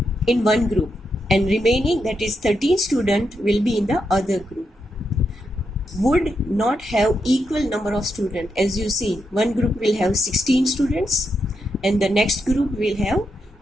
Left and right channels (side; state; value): both; normal; correlation 0.83